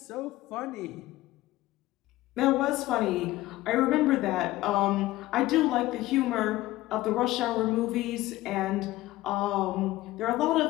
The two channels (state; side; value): quieter; right; 17.1 dB